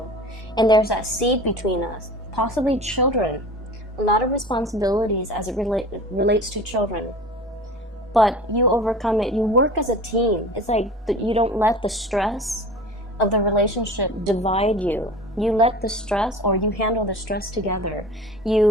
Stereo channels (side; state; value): both; normal; correlation 0.38